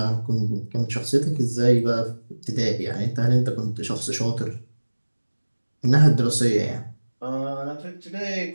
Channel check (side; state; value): both; inverted; correlation -1.00